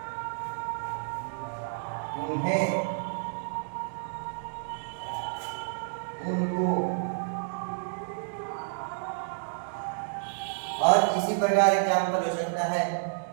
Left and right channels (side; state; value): left; silent; digital silence